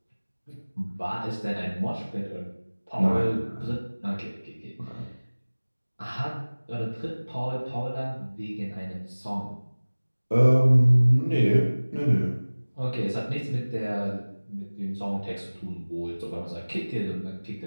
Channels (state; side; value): inverted; both; correlation -1.00